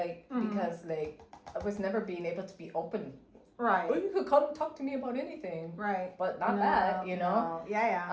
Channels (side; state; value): both; identical; correlation 1.00